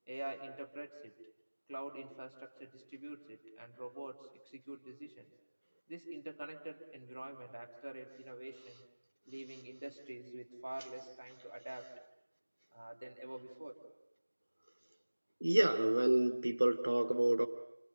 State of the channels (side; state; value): both; inverted; correlation -1.00